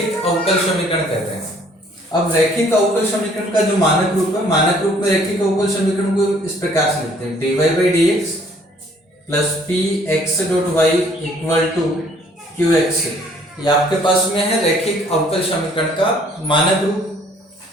अवकल समीकरण कहते हैं। अब रैखिक अवकल समीकरण का जो मानक रूप है, मानक रूप में रैखिक अवकल समीकरण को इस प्रकार से लिखते हैं: dy by D X plus P X dot Y equal to Q X. ये आपके पास में है रैखिक अवकल समीकरण का मानक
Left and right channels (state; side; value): normal; both; correlation 0.60